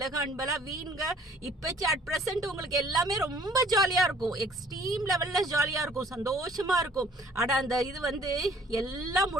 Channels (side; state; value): both; normal; correlation 0.56